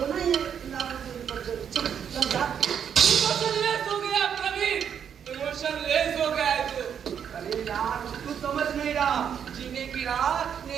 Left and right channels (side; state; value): left; quieter; 8.1 dB